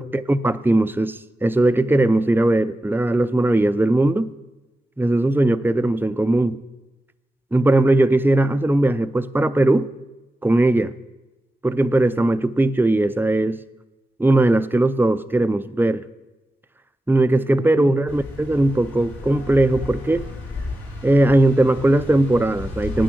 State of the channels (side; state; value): both; normal; correlation 0.93